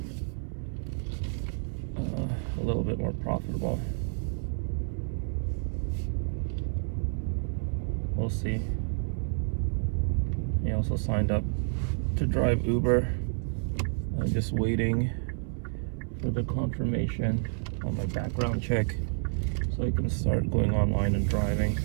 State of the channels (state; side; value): silent; left; 58 dB below the other